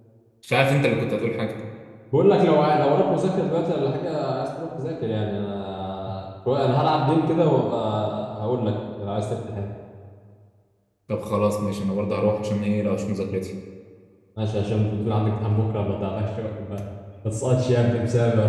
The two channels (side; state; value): both; identical; correlation 1.00